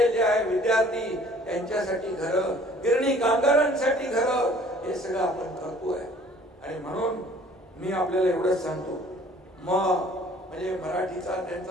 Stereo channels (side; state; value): both; normal; correlation 0.54